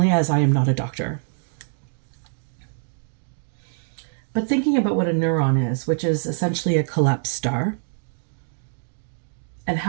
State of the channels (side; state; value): left; silent; digital silence